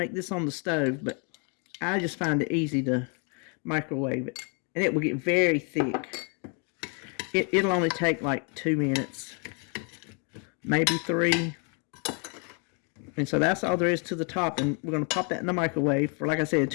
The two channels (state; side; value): quieter; right; 37.7 dB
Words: this on the stove, but I just find it easy to microwave it. And it will get very thick. It'll only take like 2 minutes, maybe 3. And so that's all there is to the top. And we're going to pop that in the microwave for, like I said,